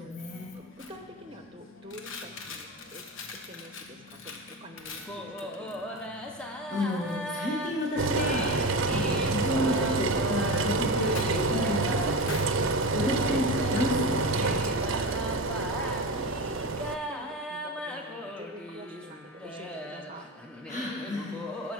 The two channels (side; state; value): both; normal; correlation 0.23